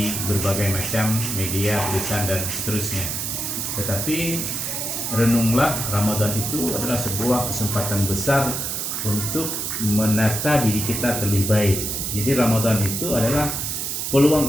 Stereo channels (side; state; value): right; noise; hiss, 2 dB below the sound